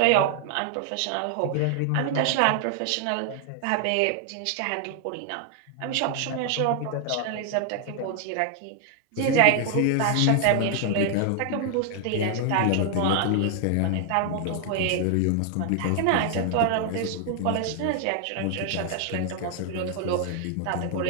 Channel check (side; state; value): both; different; correlation 0.00